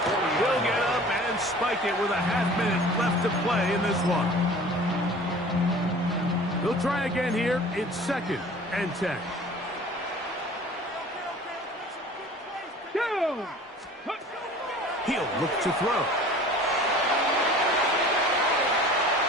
get up and spike it with a half-minute left to play in this one. He'll try again here. It's 2nd and 10. Go! He'll look to throw.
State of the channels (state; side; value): normal; both; correlation 0.45